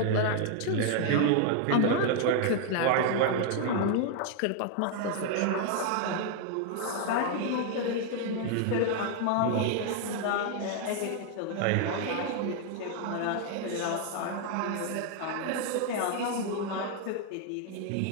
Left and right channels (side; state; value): both; different; correlation 0.00